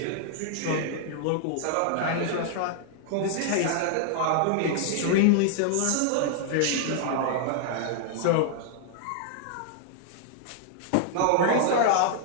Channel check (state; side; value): different; both; correlation -0.01